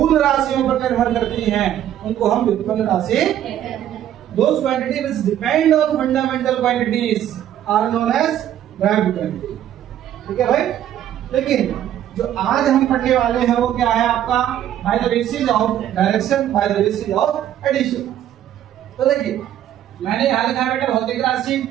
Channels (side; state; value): left; quieter; 11.2 dB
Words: राशियों पर निर्भर करती हैं उनको हम व्युत्पन्न राशि, those quantity which depend on fundamental quantities are known as direct quantity. ठीक है भाई। लेकिन जो आज हम पढ़ने वाले हैं वो क्या है आपका, by the basis of direction, by the basis of addition. तो देखिए मैंने यहां लिखा है बेटा भौतिक राशि,